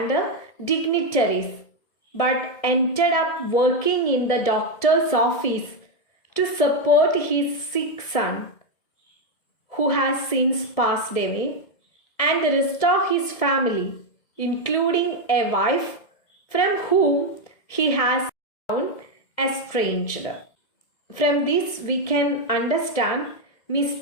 dignitaries, but ended up working in the doctor's office to support his sick son, who has since passed away, and the rest of his family, including a wife from whom he has grown estranged. From this, we can understand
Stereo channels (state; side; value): late; right; 1.7 ms